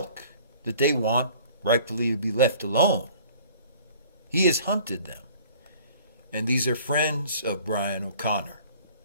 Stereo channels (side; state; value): both; inverted; correlation -0.50